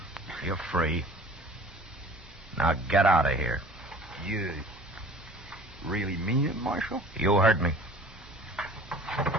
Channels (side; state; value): both; normal; correlation 0.46